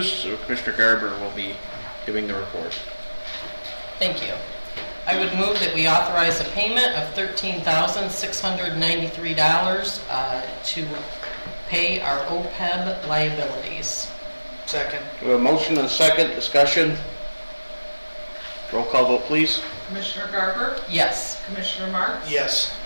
so Commissioner Garber will be giving the report. Thank you. I would move that we authorize a payment of $13,693 to pay our OPEB liabilities. Second. We have a motion and a second, discussion. Roll call vote, please. Commissioner Garber? Yes. Commissioner Marks? Yes.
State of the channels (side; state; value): both; inverted; correlation -1.00